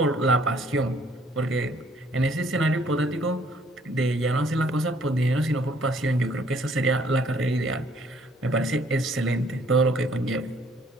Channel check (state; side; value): normal; both; correlation 0.62